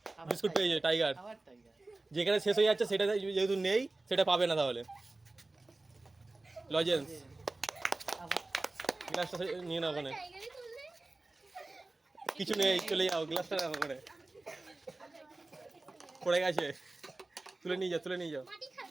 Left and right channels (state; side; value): quieter; left; 3.0 dB